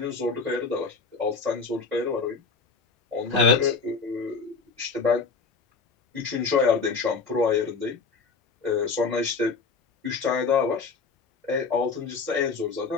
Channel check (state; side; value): quieter; right; 4.7 dB